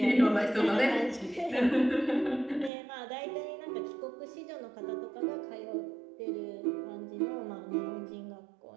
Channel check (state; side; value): drops out; left; at 2.7 s